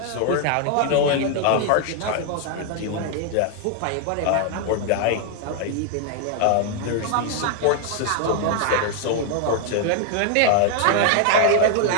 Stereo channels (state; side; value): different; both; correlation 0.00